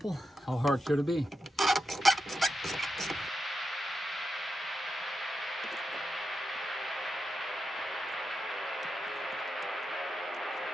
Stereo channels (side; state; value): both; normal; correlation 0.88